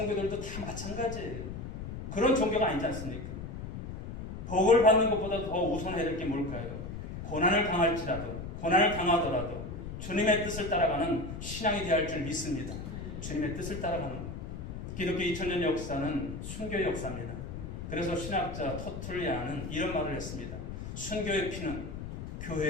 다 마찬가지예요. 그런 종교가 아니지 않습니까? 복을 받는 것보다 더 우선해야 될 게 뭘까요? 고난을 당하더라도 주님의 뜻을 따라가는 신앙이 되어야 할 줄 믿습니다. 주님의 뜻을 따라가는 것. 기독교 2000년 역사는 순교의 역사입니다. 그래서 신학자 터툴리아는 이런 말을 했습니다. 순교의 피는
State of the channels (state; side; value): noise; left; rumble, 7 dB below the sound